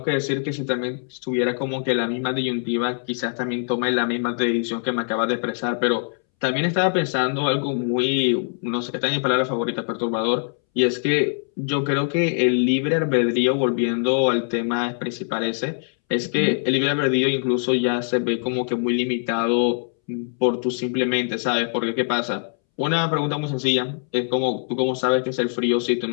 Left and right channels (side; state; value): right; silent; 64 dB below the other